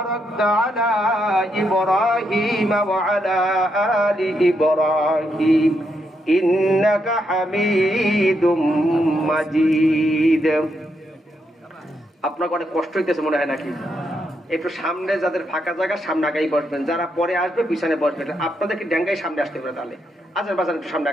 على إبراهيم وعلى آل إبراهيم إنك حميد مجيد। আপনাকে অনেক কষ্ট হইতেছে মনে হয় নাকি? একটু সামনে যাদের ফাঁকা জায়গা সামনে আগাই বসবেন, যারা পরে আসবে পিছনে বসবেন। আপনাদেরকে ড্যাঙ্গাই সামনে আসতে পারে, তাহলে আজার বাজার একটু সামনে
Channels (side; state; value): both; normal; correlation 0.80